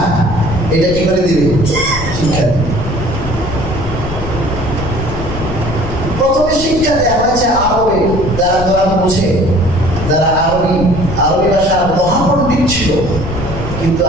এটা কি করে দিবে, শিক্ষা। প্রথমে শিক্ষা দেওয়া হয়েছে আরবে, যারা কোরআন বোঝে, যারা আরবি ভাষার মহাপণ্ডিত ছিল, কিন্তু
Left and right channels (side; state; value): left; noise; rumble, 7 dB below the sound